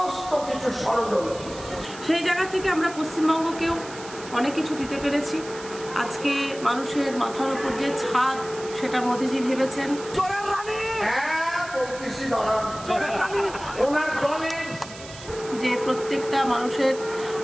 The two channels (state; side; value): noise; right; hiss, 15 dB below the sound